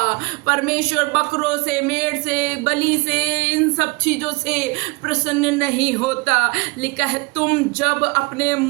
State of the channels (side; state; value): left; quieter; 27.1 dB